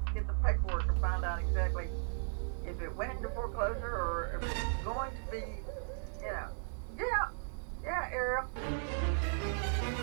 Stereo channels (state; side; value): silent; left; digital silence